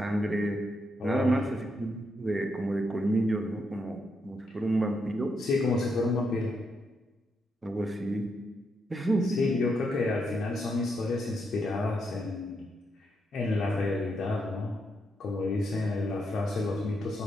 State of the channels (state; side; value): normal; both; correlation 0.80